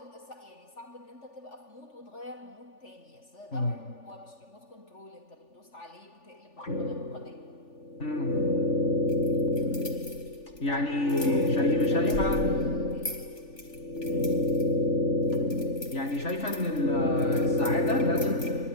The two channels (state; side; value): late; right; 3.4 ms